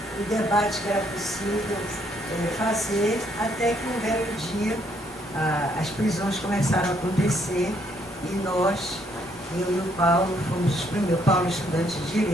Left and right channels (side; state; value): both; normal; correlation 0.70